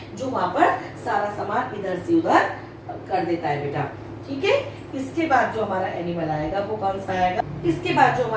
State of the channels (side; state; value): both; identical; correlation 1.00